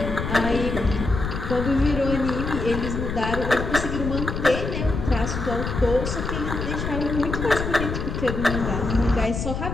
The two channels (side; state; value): left; noise; rumble, 4 dB below the sound